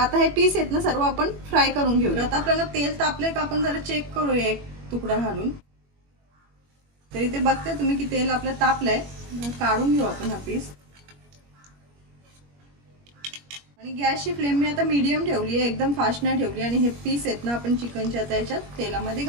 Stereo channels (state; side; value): late; left; 21 ms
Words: हे पीस आहेत ना सर्व आपण फ्राय करून घेऊया। आता आपल्याला तेल तापले का आपण जरा चेक करूया एक तुकडा घालून। तर इथे बघताय तुम्ही की तेल आपलं तापलंय, काढून घेऊ आपण हा पीस। आणि गॅसची फ्लेम मी आता मीडियम ठेवली आहे, एकदम फास्ट नाही ठेवली। आणि हे पीस आहेत ना आपण चिकनच्या आता याच्यात तेलामध्ये